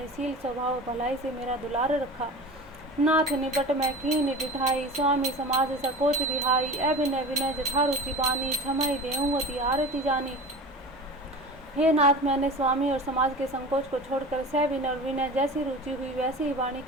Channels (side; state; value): both; normal; correlation 0.34